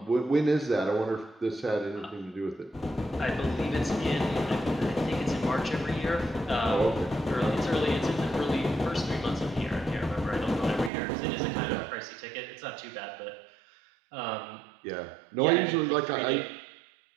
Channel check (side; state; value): left; drops out; at 10.9 s